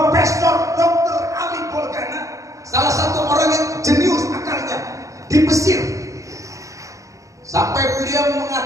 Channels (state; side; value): late; left; 0.16 ms